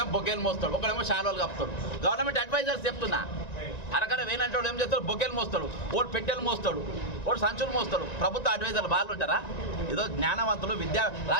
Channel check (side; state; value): right; late; 1.9 ms